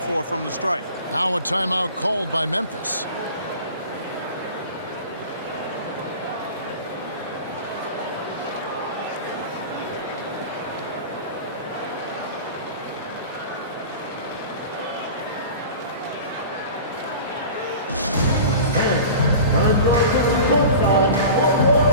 from the strike. Now a timeout called by Memphis.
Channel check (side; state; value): both; inverted; correlation -0.37